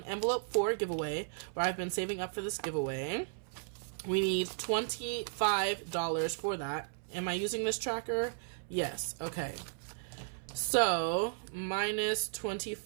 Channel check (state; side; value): silent; left; 54 dB below the other